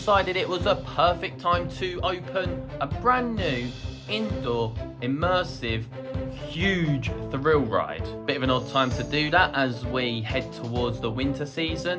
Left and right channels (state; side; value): identical; both; correlation 1.00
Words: it was a perfect time to open a brand new indoor immersive huge thrill ride. Bit of an odd time to do that as we head towards the winter